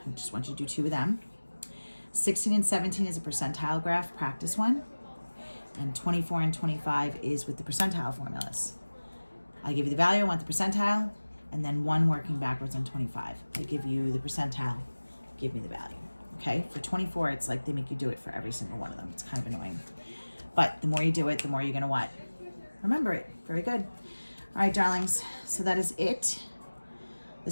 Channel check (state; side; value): inverted; both; correlation -1.00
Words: I just want you to do 2 of them. 16 and 17 is a percentile graph, practice one. And 24 and 25 is with the percentile formulas. I give you the value, I want the percentile, and then 1 working backwards on 25. I give you the percentile, give me the value. Okay, for 24, it's like they make you do it for every single one of them. It's kind of annoying. But the more you do it, the more you're gonna what? Remember it. Very good. All right, darlings, so that is it.